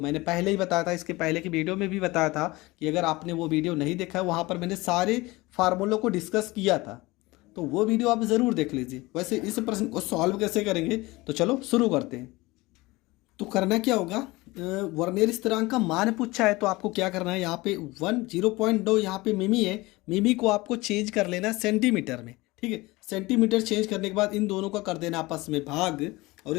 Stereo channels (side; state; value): right; quieter; 21.5 dB